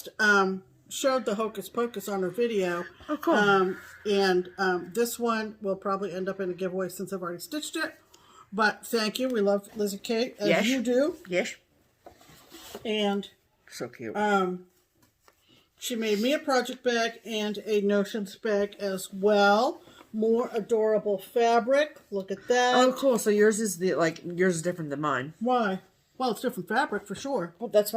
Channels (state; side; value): identical; both; correlation 1.00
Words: showed the Hocus Pocus on her video. Oh, cool. And this one will probably end up in a giveaway since I've already stitched it. But thank you. We love Lizzie Kate, as you do. Yes. And so cute. She made me a project bag and a Notions bag as well. More adorable fabric. Look at that. Oh, cool. So yours is yours is different than mine. Why? Well, it's different fabric for sure. Well, that's